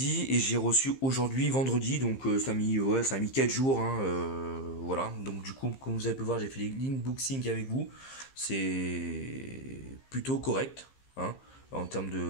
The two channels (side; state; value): right; late; 15 ms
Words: et j'ai reçu aujourd'hui, vendredi. Donc ça a mis 4 jours. Hein, voilà. Donc du coup, comme vous avez pu voir, j'ai fait l'inboxing avec vous. C'est plutôt correct. Hein, en termes